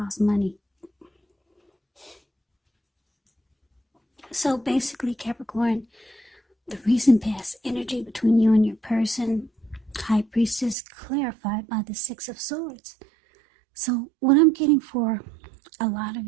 money. So basically, Capricorn, the recent past energy between you and your person, High Priestess, clarified by the Six of Swords. So what I'm getting for a lot of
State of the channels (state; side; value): drops out; left; at 10.8 s